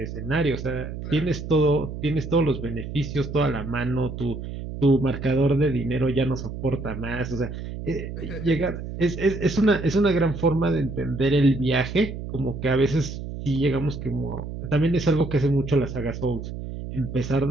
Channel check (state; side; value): noise; right; hum, 8 dB below the sound